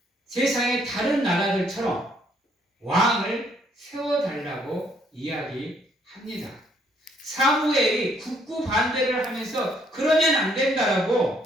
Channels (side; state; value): both; normal; correlation 0.68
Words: 세상의 다른 나라들처럼 왕을 세워달라고 이야기합니다. 사무엘이 굳고 반대를 하면서 그러면 안